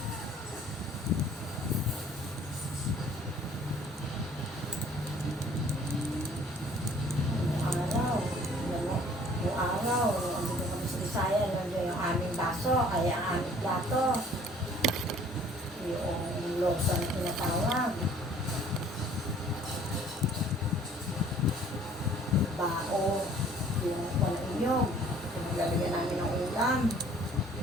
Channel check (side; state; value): both; normal; correlation 0.55